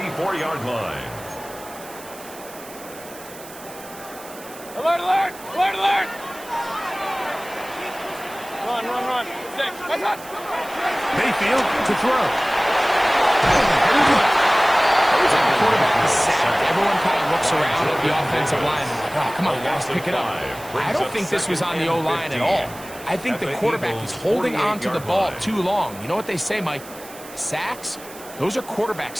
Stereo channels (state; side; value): noise; right; hiss, 17 dB below the sound